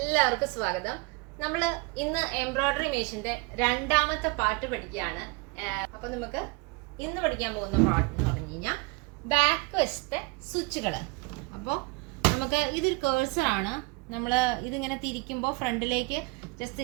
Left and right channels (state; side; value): quieter; left; 26.4 dB